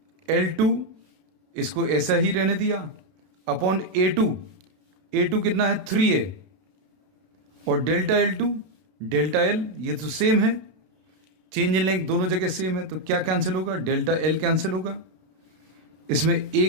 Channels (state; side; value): late; left; 32 ms